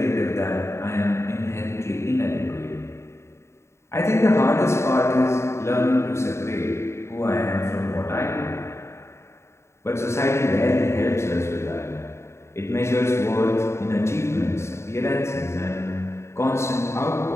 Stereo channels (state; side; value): late; right; 0.13 ms